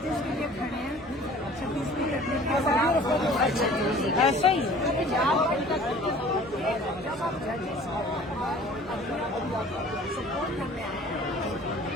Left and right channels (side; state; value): both; normal; correlation 0.48